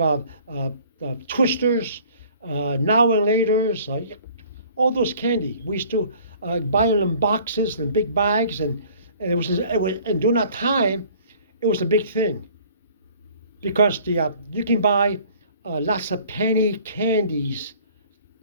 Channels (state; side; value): inverted; both; correlation -0.52